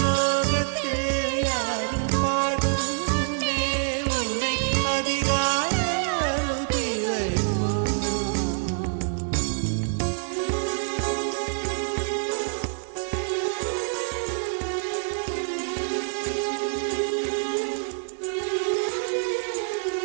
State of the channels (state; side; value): silent; left; 61 dB below the other